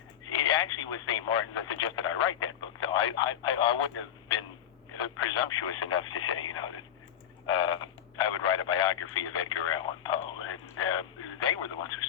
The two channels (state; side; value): quieter; right; 9.8 dB